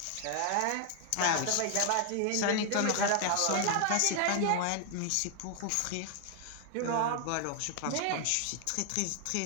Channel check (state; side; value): different; both; correlation 0.00